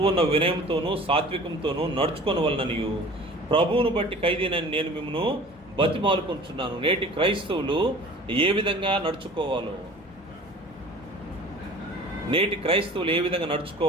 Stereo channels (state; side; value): normal; both; correlation 0.44